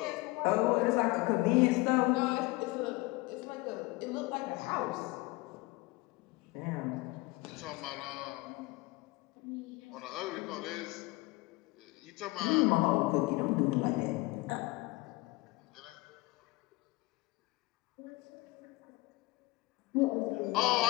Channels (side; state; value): right; quieter; 21.6 dB